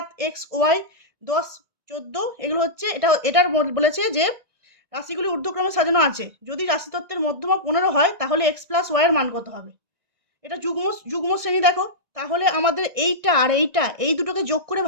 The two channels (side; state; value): left; late; 1.6 ms